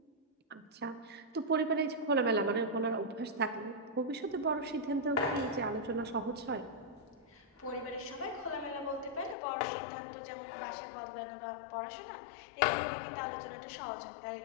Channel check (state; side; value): drops out; right; at 9.3 s